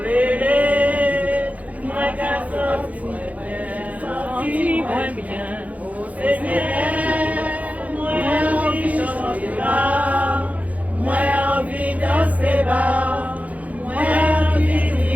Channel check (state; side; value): late; left; 0.071 ms